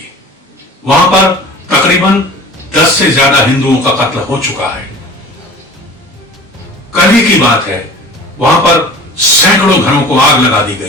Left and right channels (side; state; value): both; normal; correlation 0.41